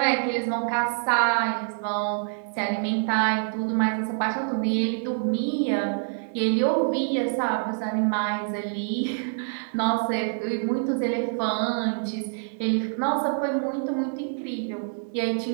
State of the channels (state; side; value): silent; left; digital silence